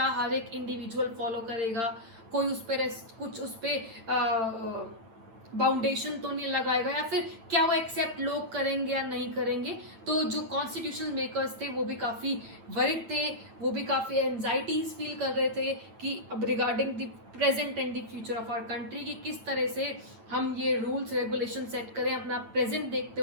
हर एक इंडिविजुअल फॉलो करेगा, कोई उस पर कुछ उस पर बाउंडेशन तो नहीं लगाएगा, या फिर क्या वो एक्सेप्ट लोग करेंगे या नहीं करेंगे। तो जो कॉन्स्टिट्यूशनल मेकर्स थे वो भी काफ़ी वरिड थे, वो भी काफ़ी एंजाइटीज फील कर रहे थे कि अब regarding the present and the future of our country की किस तरह से हम ये रूल्स रेगुलेशन सेट करें, अपना प्रेजेंट देखते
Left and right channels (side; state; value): left; late; 9.0 ms